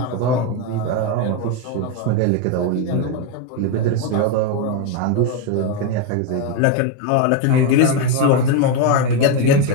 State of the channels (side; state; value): both; different; correlation 0.02